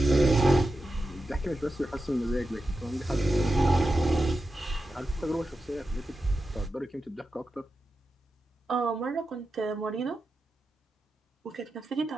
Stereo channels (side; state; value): both; normal; correlation 0.90